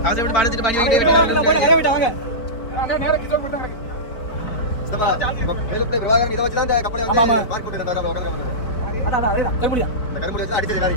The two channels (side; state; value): right; late; 4.2 ms